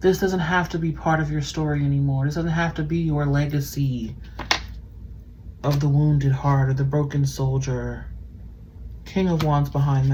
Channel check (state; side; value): identical; both; correlation 1.00